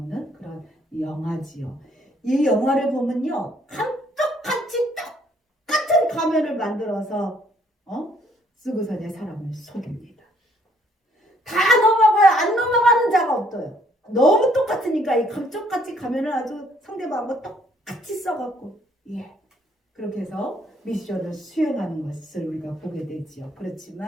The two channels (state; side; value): normal; both; correlation 0.65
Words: 그런 영화지요. 이 영화를 보면요 감쪽같이 똑같은 가면을 만들어서 쓰고서 내 사람을 속입니다. 다 넘어가요. 안 넘어가는 자가 없어요. 너무 똑같으니까 이 감쪽같이 가면을 아주 상대방하고 똑같이 써갖고 그렇게 해서 미션을 수행하는 것을 우리가 보게 되지요.